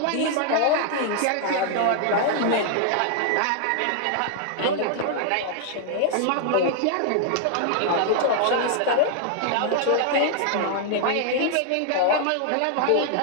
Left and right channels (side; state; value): both; different; correlation 0.00